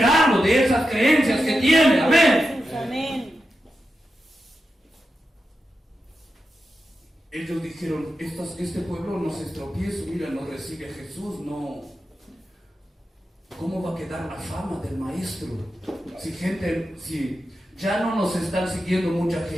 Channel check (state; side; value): normal; both; correlation 0.89